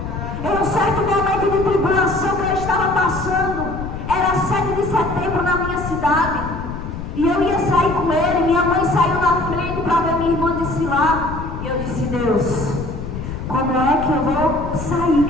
setembro na minha cidade. E eu ia sair com ele. Minha mãe saiu na frente para ver minha irmã desfilar. E eu disse: Deus, como é que eu vou sair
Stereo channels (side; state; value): left; noise; rumble, 7 dB below the sound